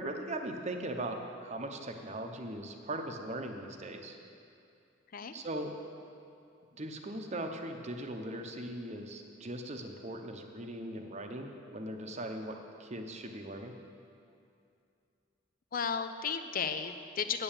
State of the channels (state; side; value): normal; both; correlation 0.14